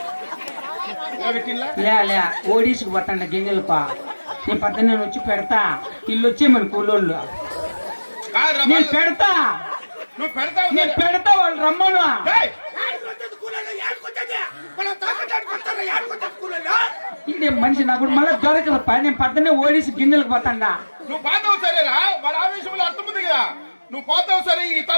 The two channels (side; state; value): both; inverted; correlation -1.00